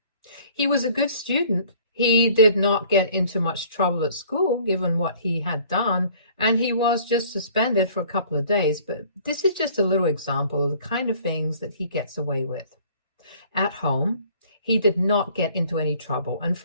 He was a good student. He did not get into much trouble at school, given what he had done, and he was just suspended for a couple of days. But this is just a little example of the kind of things that he gets away with. At home, he did not get into any trouble, and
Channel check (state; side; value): inverted; both; correlation -0.54